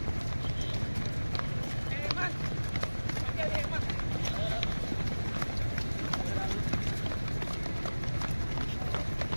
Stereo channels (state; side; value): inverted; both; correlation -1.00